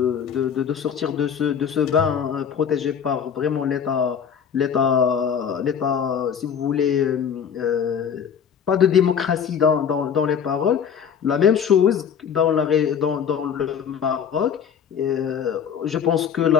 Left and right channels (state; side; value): quieter; right; 7.6 dB